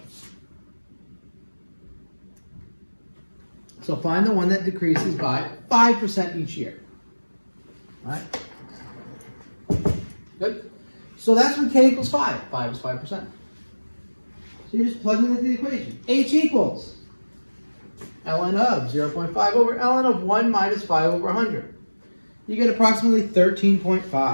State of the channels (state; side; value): inverted; both; correlation -1.00